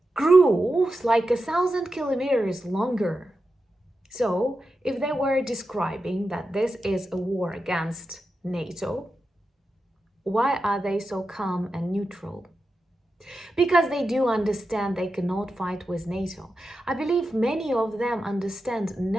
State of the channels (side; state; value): both; normal; correlation 0.90